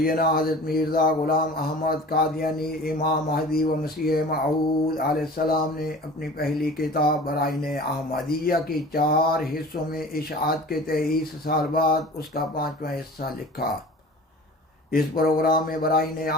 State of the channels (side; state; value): both; normal; correlation 0.41